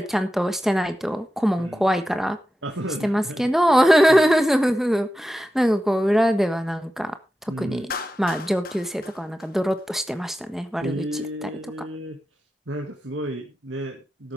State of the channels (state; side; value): normal; both; correlation 0.92